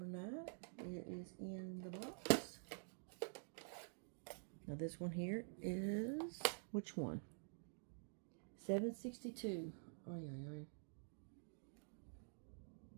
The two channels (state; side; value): silent; left; digital silence